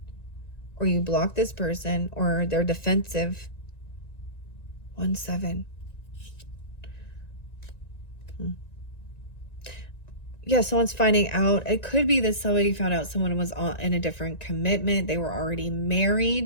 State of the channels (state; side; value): late; right; 1.9 ms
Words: or you blocked this person, or they're defensive. 1-7. Yeah, someone's finding out. It could be that somebody found out someone was in a different commitment. They were already